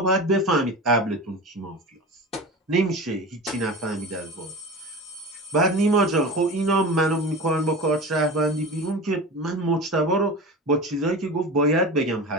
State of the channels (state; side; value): normal; both; correlation 0.30